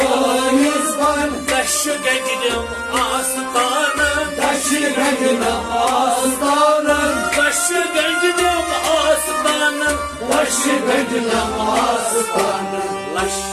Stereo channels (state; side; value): identical; both; correlation 1.00